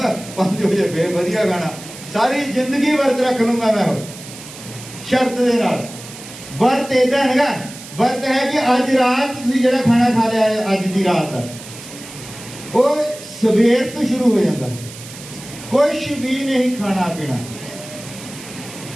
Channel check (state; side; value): noise; right; hiss, 15 dB below the sound